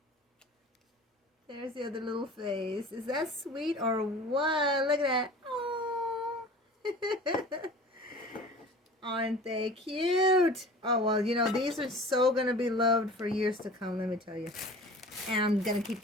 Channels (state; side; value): normal; both; correlation 0.41